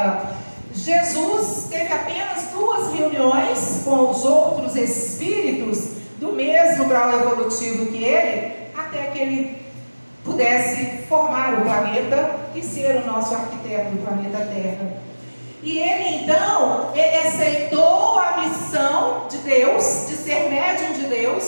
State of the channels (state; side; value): inverted; both; correlation -1.00